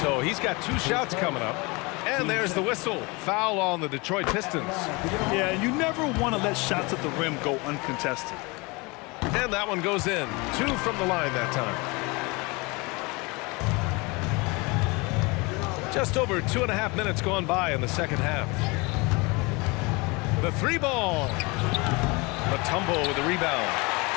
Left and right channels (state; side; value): quieter; right; 26.6 dB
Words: So he's got 2 shots coming up. And there's the whistle. Foul on the Detroit Pistons. Yeah, you never want to let shots at the rim go uncontested. And that one goes in. 2 from the line that time. Just over 2.5 minutes gone by in the second half. The 3 ball. Mutombo with the rebound.